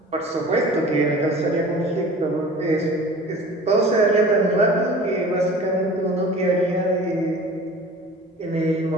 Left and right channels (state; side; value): normal; both; correlation 0.42